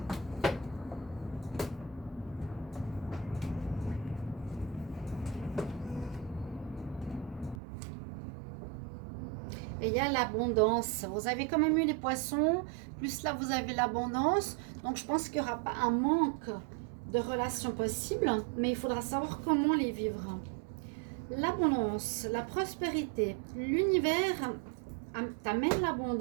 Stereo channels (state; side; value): drops out; left; at 7.6 s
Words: Et il y a l'abondance. Vous avez quand même eu les poissons, plus là vous avez l'abondance. Donc je pense qu'il n'y aura pas un manque de relations possibles, mais il faudra savoir comment les vivre. L'abondance, la prospérité, l'univers t'amène